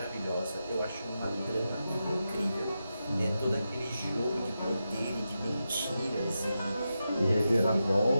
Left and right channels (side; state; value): both; inverted; correlation -0.89